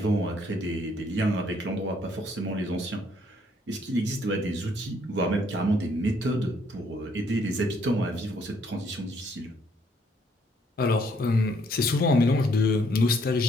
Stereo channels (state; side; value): normal; both; correlation 0.67